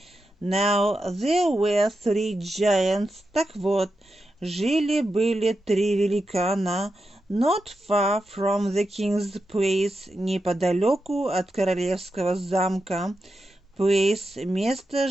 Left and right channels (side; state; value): both; normal; correlation 0.88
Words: Now there were three giants. Так вот, жили-были три великана, not far from the king's place, неподалеку от королевского замка. Place, место,